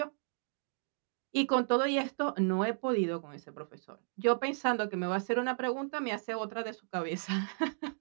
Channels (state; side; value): silent; left; digital silence